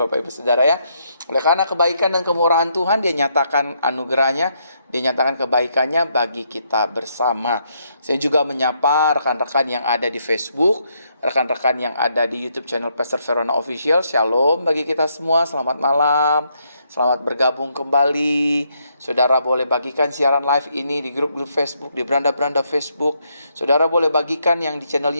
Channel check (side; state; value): both; inverted; correlation -0.75